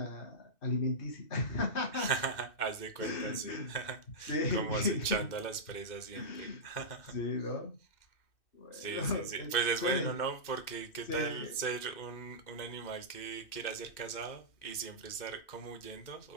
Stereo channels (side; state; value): right; late; 2.6 ms